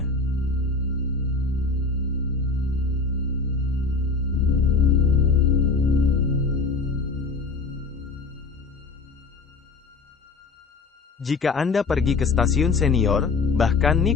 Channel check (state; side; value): quieter; right; 4.1 dB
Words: Jika Anda pergi ke stasiun senior, bahkan